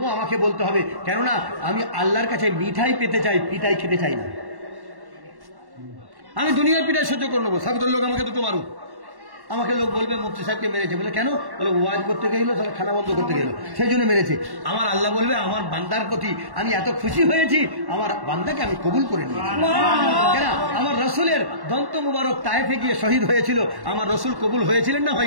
আমাকে বলতে হবে, কেননা আমি আল্লাহর কাছে মিঠাই পেতে চাই, পিঠাই খেতে চাই না। আমি দুনিয়ার পিঠাই সহ্য করে নেবো, সাগরের লোক আমাকে দুটো মারুক, আমাকে লোক বলবে মুফতি সাহেবকে মেরেছে, বলে কেন? বলে ওয়াজ করতে গেল, তাহলে খানা বন্ধ করতে গেল, সেই জন্য মেরেছে। আমার আল্লাহ বলবে, আমার বান্দার প্রতি আমি এত খুশি হয়েছি, আমার বান্দাকে আমি কবুল করে নিয়েছি। কেন? আমার রসুলের দন্ত মুবারক তায়েফে গিয়ে শহীদ হয়েছিল, আমার রসুল কবুল হয়েছিলেন না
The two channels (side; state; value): left; late; 1.1 ms